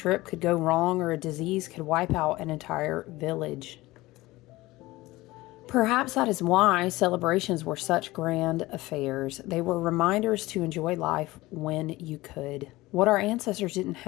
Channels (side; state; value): right; quieter; 19.2 dB